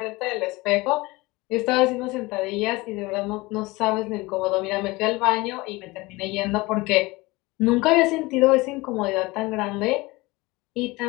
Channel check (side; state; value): right; quieter; 22.2 dB